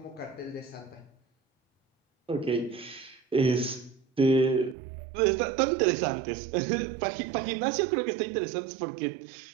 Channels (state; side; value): drops out; left; at 4.8 s